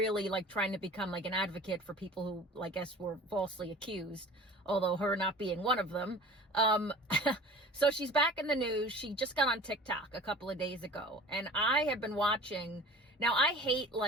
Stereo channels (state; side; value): normal; both; correlation 0.42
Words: like trying to become like an advocate for people who I guess were falsely accused, although her not being one of them. So she's back in the news. She just got on TikTok a couple of days ago, and I have been watching. Now, I hate